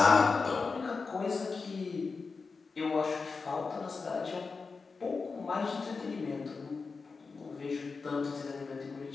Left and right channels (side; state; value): right; quieter; 4.6 dB